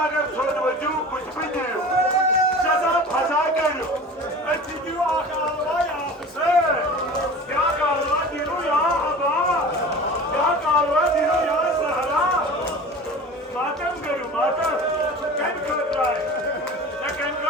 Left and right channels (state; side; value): normal; both; correlation 0.38